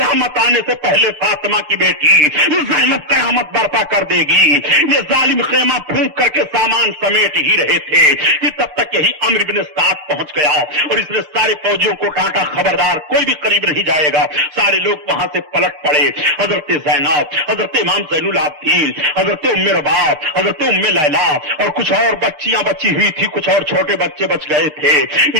آنے سے پہلے فاطمہ کی بیٹی زینب قیامت برپا کر دے گی. یہ ظالم خیمہ پھونک کر کے سامان سمیٹ ہی رہے تھے کہ تب تک یہی عمرو بن سعد پہنچ گیا اور اس نے سارے فوجیوں کو ڈانٹا، خبردار کوئی بھی قریب نہیں جائے گا. سارے لوگ وہاں سے پلٹ پڑے. حضرت زینب، حضرت امام زین العابدین، حضرت ام رباب، حضرت ام لیلا اور کچھ اور بچیاں بچی ہوئی تھی، کچھ اور چھوٹے بچے بچ گئے تھے.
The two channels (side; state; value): left; late; 6.6 ms